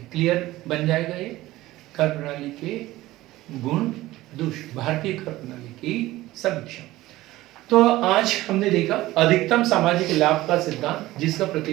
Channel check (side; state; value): left; quieter; 17.1 dB